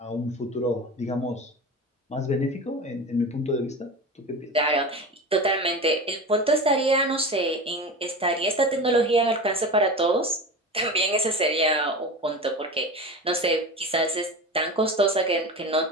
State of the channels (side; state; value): both; normal; correlation 0.29